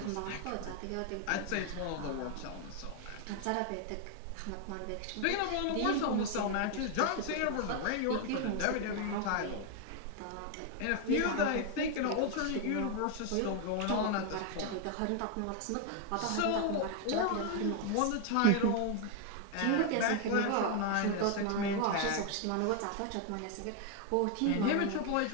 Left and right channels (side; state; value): both; different; correlation 0.00